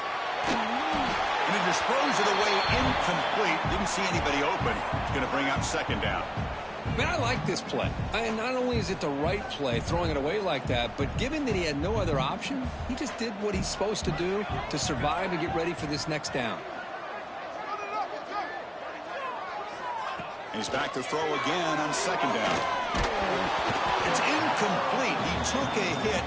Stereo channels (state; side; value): identical; both; correlation 1.00